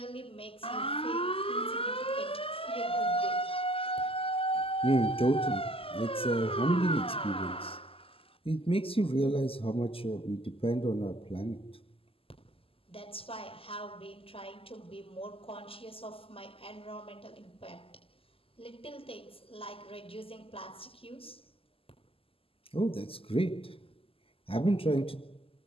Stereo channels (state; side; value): late; right; 0.27 ms